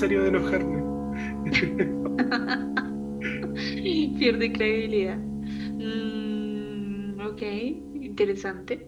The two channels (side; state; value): both; identical; correlation 1.00